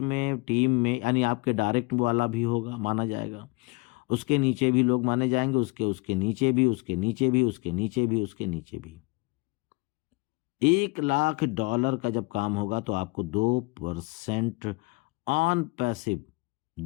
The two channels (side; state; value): right; quieter; 25.6 dB